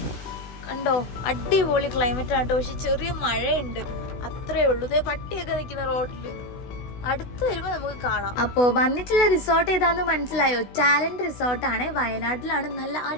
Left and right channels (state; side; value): late; right; 16 ms